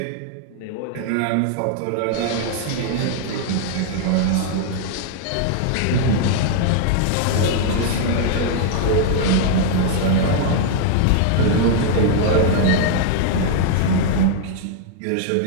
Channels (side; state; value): both; different; correlation -0.01